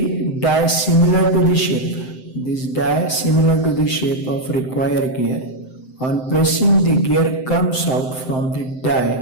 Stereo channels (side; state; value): right; late; 7.8 ms